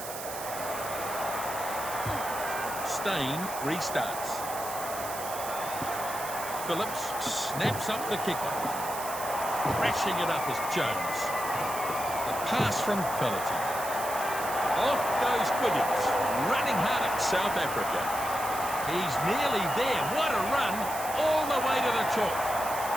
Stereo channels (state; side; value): noise; right; hiss, 9 dB below the sound